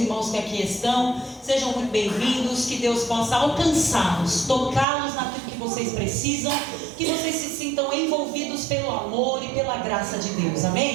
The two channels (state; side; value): drops out; left; at 4.9 s